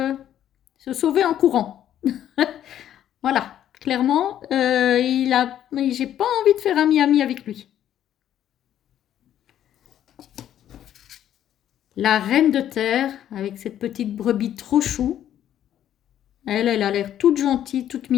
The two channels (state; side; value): quieter; right; 11.0 dB